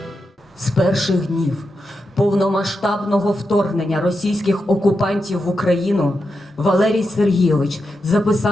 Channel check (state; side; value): normal; both; correlation 0.87